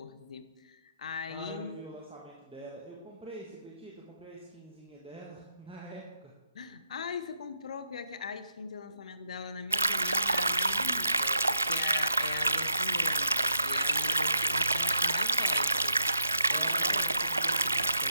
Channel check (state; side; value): inverted; both; correlation -0.79